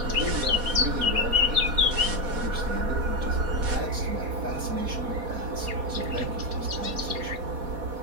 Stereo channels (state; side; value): late; left; 4.2 ms